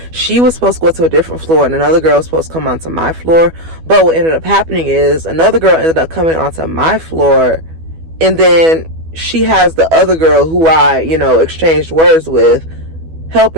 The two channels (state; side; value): late; left; 12 ms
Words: she was supposed to go to a different floor, and another girl was supposed to come onto my floor. But what ended up happening is another girl ended up coming onto my floor, and then she has the other girl who I, you know, exchanged words with,